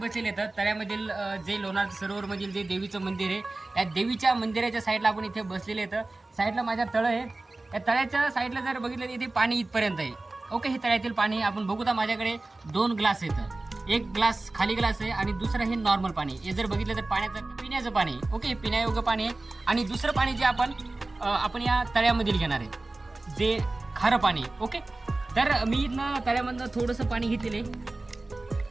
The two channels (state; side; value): quieter; left; 3.0 dB